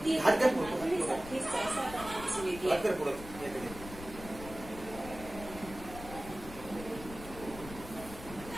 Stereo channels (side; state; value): left; noise; rumble, 13 dB below the sound